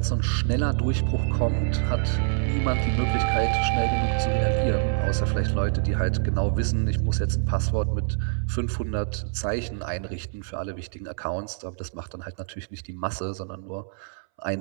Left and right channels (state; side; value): silent; left; 61 dB below the other